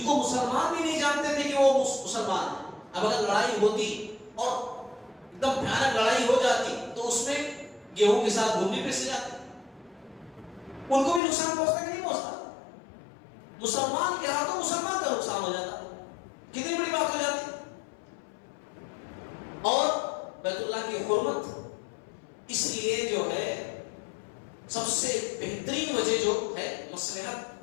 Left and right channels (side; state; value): right; drops out; at 11.2 s